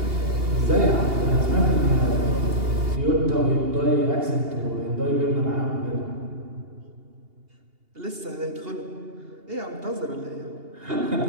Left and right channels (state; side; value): late; left; 2.8 ms